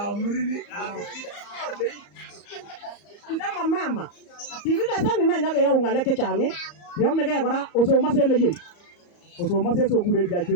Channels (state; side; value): late; right; 34 ms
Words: ndama mama kikikesan ina nyakeyau ng'alek chechang yomegei kora osomose eleyei osomose sokure